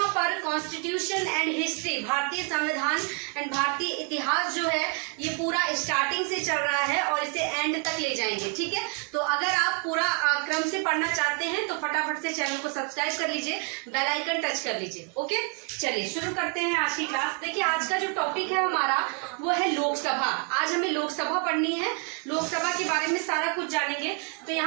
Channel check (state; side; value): quieter; left; 33.2 dB